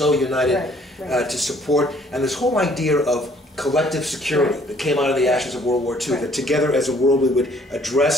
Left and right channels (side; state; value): both; normal; correlation 0.60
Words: united to support, and this whole idea of collective security that came out of the ashes of World War II, that together as a world we would